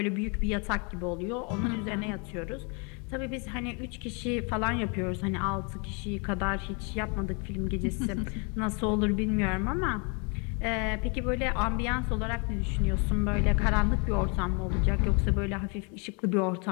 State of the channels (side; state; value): right; quieter; 34.2 dB